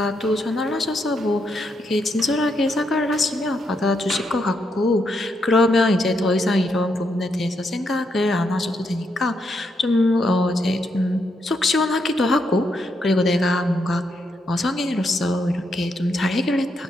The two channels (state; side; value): normal; both; correlation 0.79